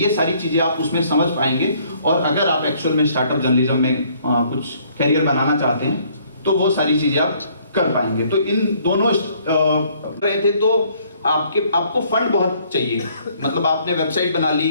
सारी चीज़ें आप उसमें समझ पाएंगे। और अगर आप एक्चुअल में स्टार्टअप जर्नलिज्म में कुछ करियर बनाना चाहते हैं तो वो सारी चीज़ें आप कर पाएंगे। तो इन दोनों रहे थे तो आपको फंड बहुत चाहिए। मतलब आपने वेबसाइट बना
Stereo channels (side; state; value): both; inverted; correlation -0.63